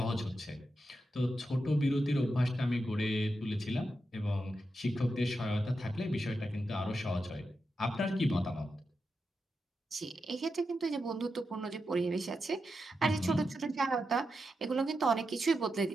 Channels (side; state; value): both; normal; correlation 0.87